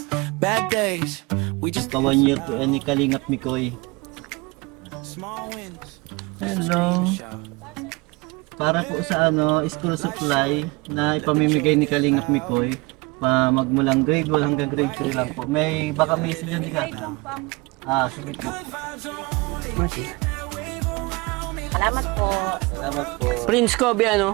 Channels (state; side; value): quieter; left; 25.7 dB